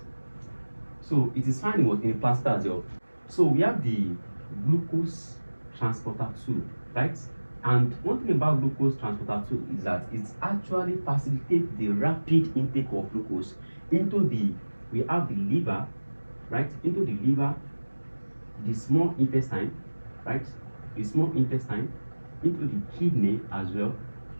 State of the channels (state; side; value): inverted; both; correlation -1.00